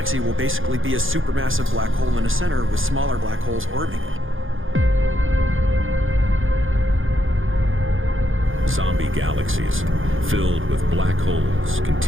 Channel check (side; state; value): left; late; 0.59 ms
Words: will basically be a supermassive black hole in a center with smaller black holes orbiting it. Zombie galaxies filled with black holes